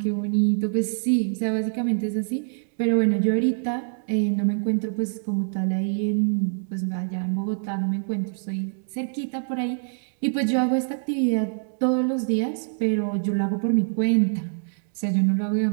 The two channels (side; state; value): left; silent; 62 dB below the other